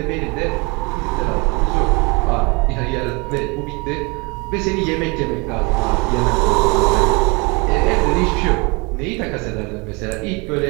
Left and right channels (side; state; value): left; quieter; 28.7 dB